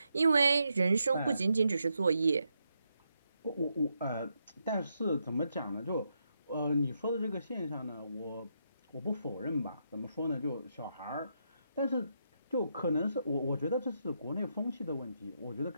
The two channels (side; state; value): both; inverted; correlation -0.81